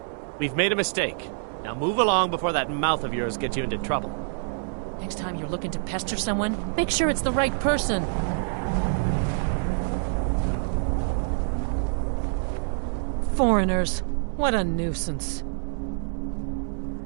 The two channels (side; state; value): left; silent; 61 dB below the other